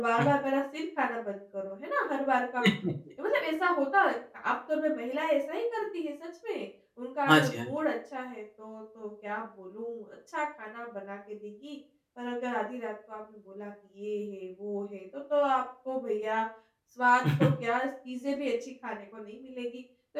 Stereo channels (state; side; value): identical; both; correlation 1.00